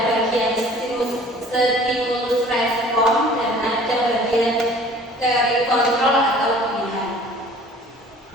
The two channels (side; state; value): both; normal; correlation 0.49